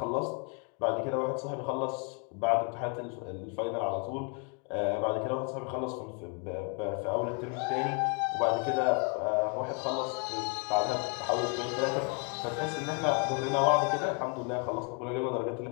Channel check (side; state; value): right; quieter; 35.9 dB